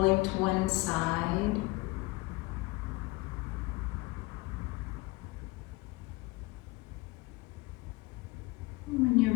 to one side. When you're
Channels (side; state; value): right; quieter; 22.7 dB